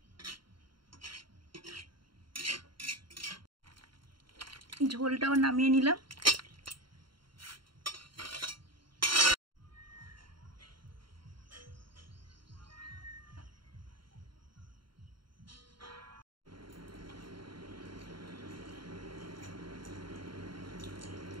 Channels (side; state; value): left; late; 0.73 ms